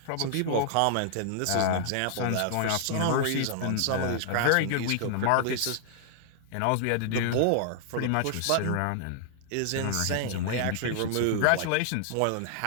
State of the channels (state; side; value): different; both; correlation -0.01